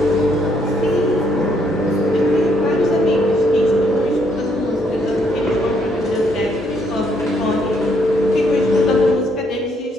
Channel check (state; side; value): normal; both; correlation 0.71